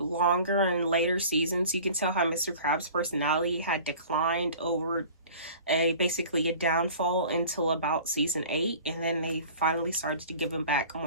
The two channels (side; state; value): both; inverted; correlation -0.43